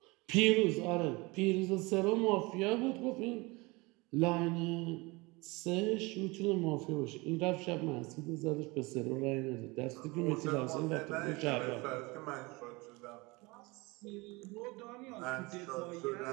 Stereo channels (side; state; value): left; quieter; 24.7 dB